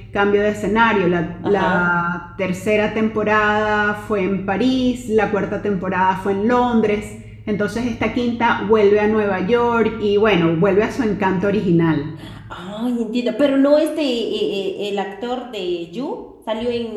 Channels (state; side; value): identical; both; correlation 1.00